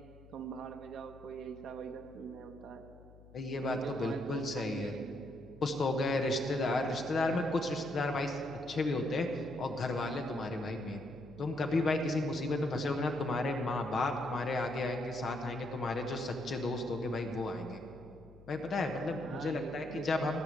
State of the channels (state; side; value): noise; left; hum, 21 dB below the sound